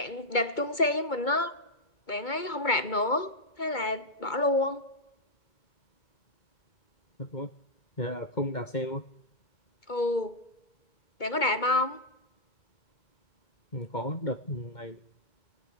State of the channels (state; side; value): late; right; 2.2 ms